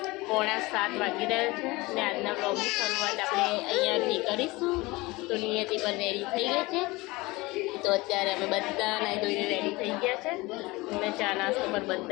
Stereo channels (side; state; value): right; quieter; 22.1 dB